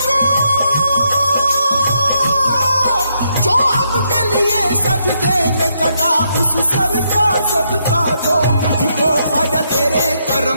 जो हक के लिए सजदे में कटा उस सर का सदका दो मुझको। ख्वाजा तेरे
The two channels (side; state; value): both; inverted; correlation -0.77